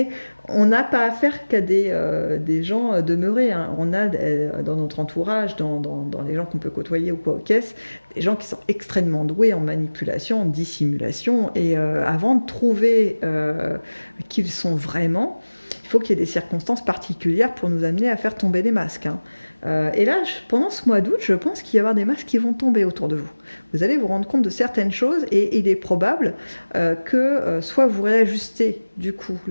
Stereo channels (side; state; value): both; inverted; correlation -1.00